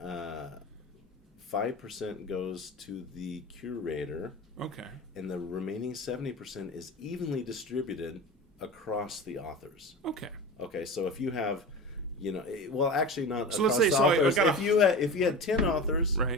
5% goes to the curator. Okay. And the remaining 70% is evenly distributed across the authors. Okay. Okay, so if you have, actually not so across let's say, the authors. If you had 10 authors,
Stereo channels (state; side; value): normal; both; correlation 0.30